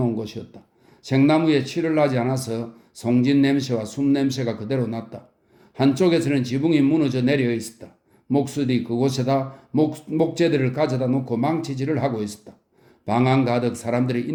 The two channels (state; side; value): identical; both; correlation 1.00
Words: 곳이었다. 생나무에 칠을 나지 않아서 송진 냄새와 숨 냄새가 그대로 났다. 한쪽에서는 지붕이 무너져 내려 있었다. 목수들이 그곳에다 목재들을 가져다 놓고 망치질을 하고 있었다. 방안 가득 사람들의